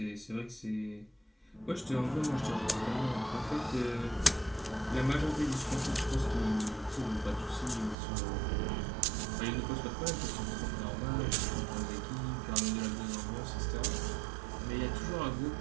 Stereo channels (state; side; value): drops out; left; at 8.0 s